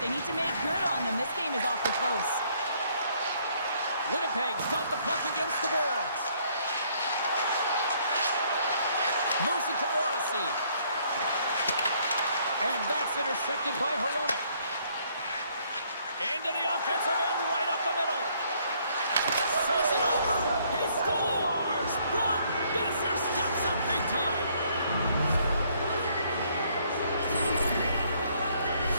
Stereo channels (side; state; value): both; inverted; correlation -0.66